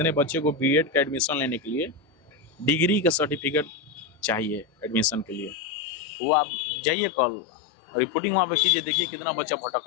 बच्चे को BEd का एडमिशन लेने के लिए डिग्री का सर्टिफिकेट चाहिए एडमिशन के लिए, वो आप जाइए कल रिपोर्टिंग वहाँ पे कीजिए, देखिए कितना बच्चा भटक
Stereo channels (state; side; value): drops out; right; at 5.6 s